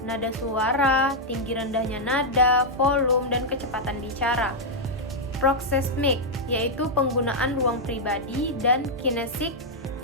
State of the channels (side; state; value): both; normal; correlation -0.04